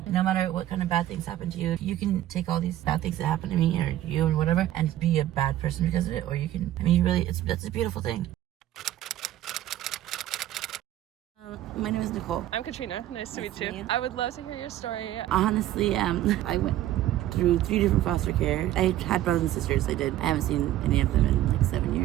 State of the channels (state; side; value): quieter; left; 13.4 dB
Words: No matter what kind of bad things happen to you, you can take all these bad things that happen to me or you and whatever and be a bad person because of it. Or you can, I mean, you really, that's a beautiful thing. My name is Nicole. I'm Katrina. Nice to meet you. I would love to hear your story. Honestly, I went through 3 different foster care. I had brothers and sisters. I haven't seen any of them in like 7